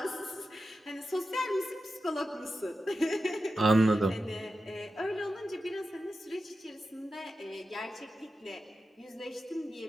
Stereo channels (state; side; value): normal; both; correlation 0.91